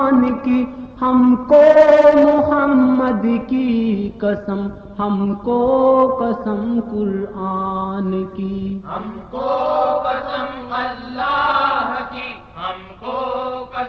کی، ہم کو محمد کی قسم، ہم کو قسم قرآن کی، ہم کو قسم اللہ کی، ہم کو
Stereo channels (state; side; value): identical; both; correlation 1.00